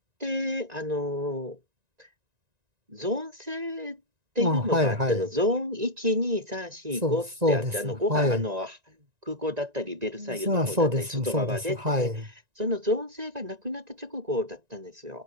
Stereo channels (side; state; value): left; late; 1.9 ms